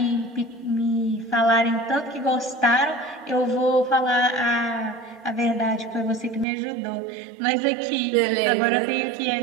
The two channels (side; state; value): left; drops out; at 6.5 s